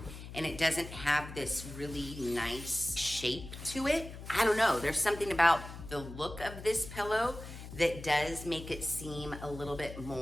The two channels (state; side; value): noise; left; hum, 12 dB below the sound